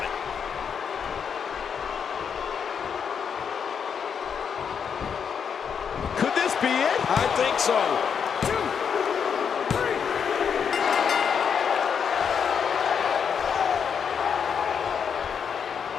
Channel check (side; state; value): right; quieter; 7.0 dB